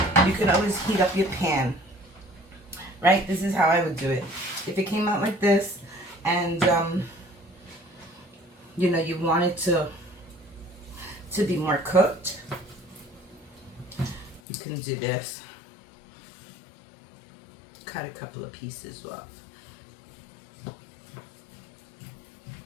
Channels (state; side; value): drops out; right; at 14.4 s